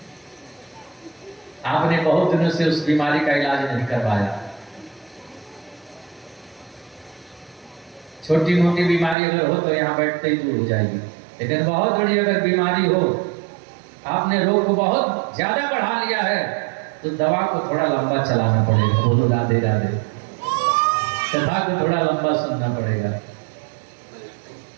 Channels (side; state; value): left; drops out; at 9.2 s